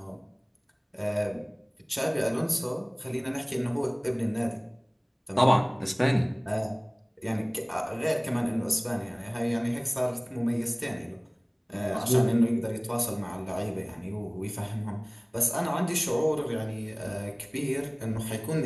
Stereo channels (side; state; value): both; identical; correlation 1.00